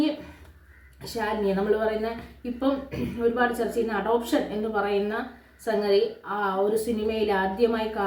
ശാലിനിയെ നമ്മൾ പറയുന്ന ഇപ്പം ഒരുപാട് ചർച്ച ചെയ്യുന്ന അഡോപ്ഷൻ എന്ന് പറയുന്ന സംഗതി ആ ഒരു സിനിമയിൽ ആദ്യമായി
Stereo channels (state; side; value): identical; both; correlation 1.00